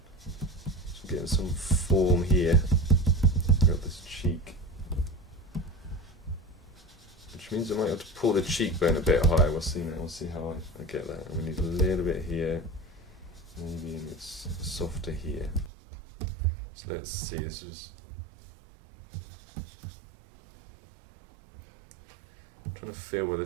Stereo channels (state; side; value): drops out; left; at 15.7 s